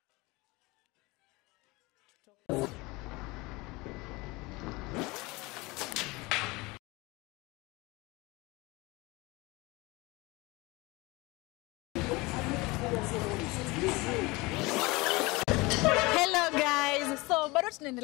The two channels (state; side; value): quieter; right; 23.5 dB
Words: Hello guys, so bado